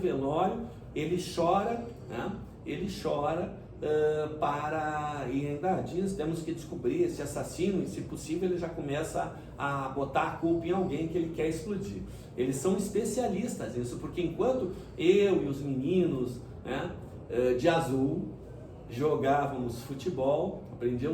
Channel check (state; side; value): identical; both; correlation 1.00